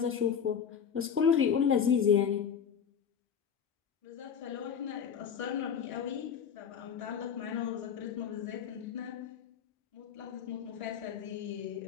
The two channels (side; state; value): right; quieter; 7.5 dB